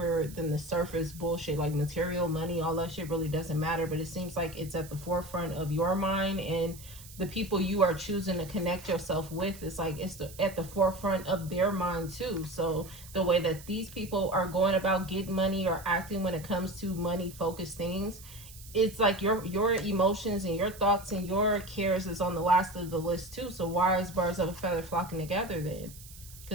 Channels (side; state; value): right; noise; hiss, 18 dB below the sound